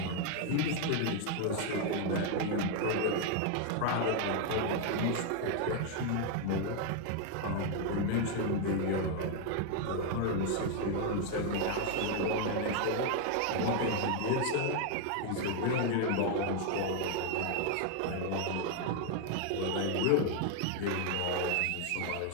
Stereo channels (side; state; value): both; different; correlation 0.01